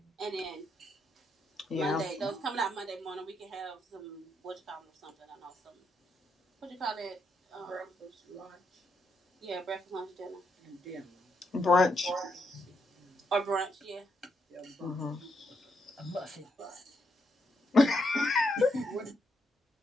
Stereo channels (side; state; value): both; normal; correlation 0.79